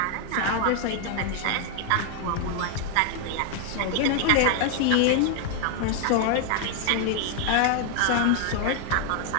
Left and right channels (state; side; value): different; both; correlation 0.00